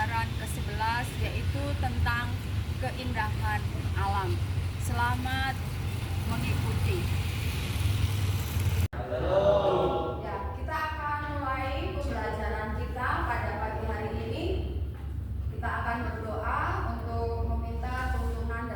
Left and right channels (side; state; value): both; identical; correlation 1.00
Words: ke-11 yaitu tentang keindahan alam. Selamat mengikuti. Ya, kita akan mulai pembelajaran kita pada pagi hari ini. Kita akan berdoa untuk meminta tuntunan